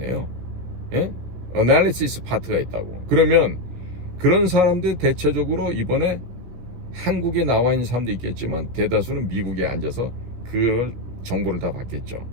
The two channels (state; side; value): late; left; 17 ms